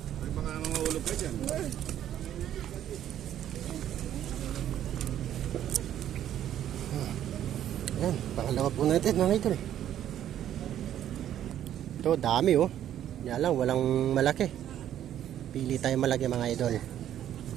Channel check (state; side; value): quieter; left; 11.1 dB